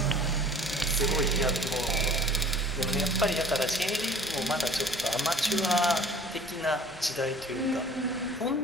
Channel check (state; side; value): normal; both; correlation 0.48